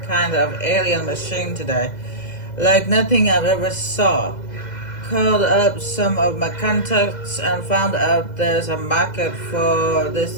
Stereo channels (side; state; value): right; late; 2.0 ms